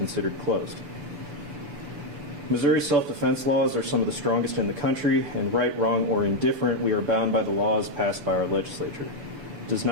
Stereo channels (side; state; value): left; late; 6.9 ms